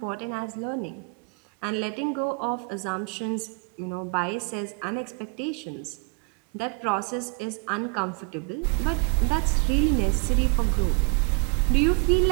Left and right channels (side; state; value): left; quieter; 36.0 dB